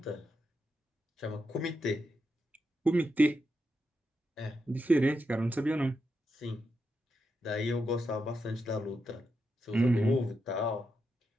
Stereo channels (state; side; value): normal; both; correlation 0.85